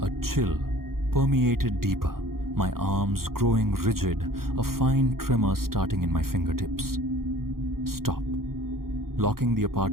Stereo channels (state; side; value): late; left; 0.92 ms